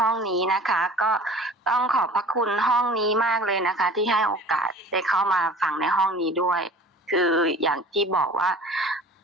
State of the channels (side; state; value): both; normal; correlation 0.43